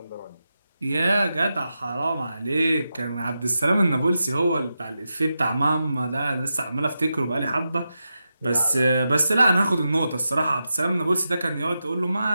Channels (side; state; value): both; inverted; correlation -0.89